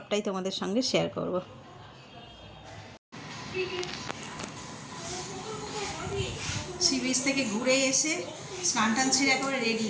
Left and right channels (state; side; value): identical; both; correlation 1.00